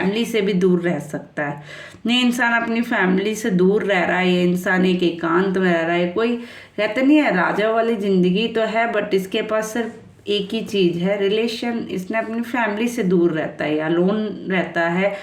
से भी दूर रह सकता है। ये इंसान अपनी फैमिली से दूर रह रहा है, ये इंसान एक एकांत में रह रहा है। कोई कहते नहीं है राजा वाली ज़िंदगी तो है, बट इसके पास सिर्फ एक ही चीज़ है, रिलेशन। इसने अपनी फैमिली से दूर रहता है या लोन रहता है,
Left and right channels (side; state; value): both; identical; correlation 1.00